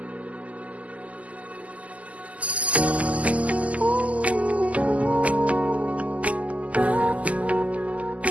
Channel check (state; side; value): late; left; 0.070 ms